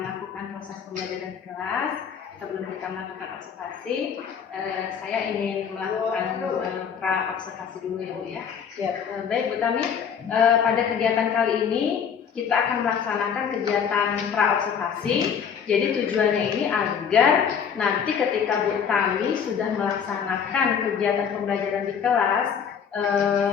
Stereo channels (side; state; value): right; quieter; 7.3 dB